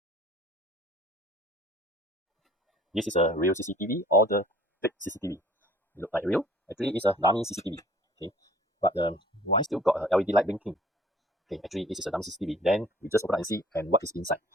This is a real CCTV or the fake CCTV. It look like real. Actually, it's a dummy CCTV. Okay. But why still got a LED light blinking? Okay, actually, this is a dummy CCTV. Then we just open up and see and what is inside.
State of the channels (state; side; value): normal; both; correlation 0.51